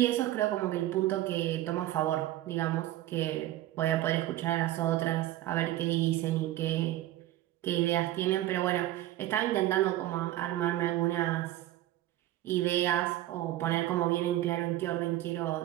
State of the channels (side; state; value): left; quieter; 14.7 dB